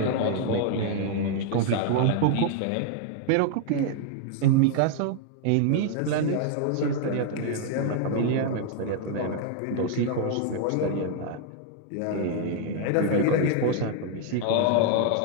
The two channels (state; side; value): different; both; correlation 0.00